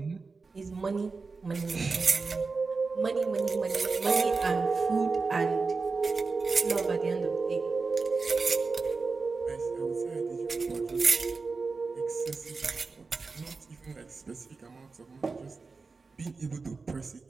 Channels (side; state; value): left; quieter; 4.3 dB